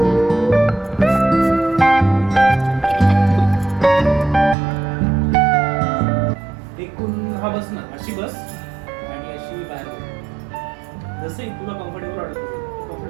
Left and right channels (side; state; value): left; drops out; at 4.5 s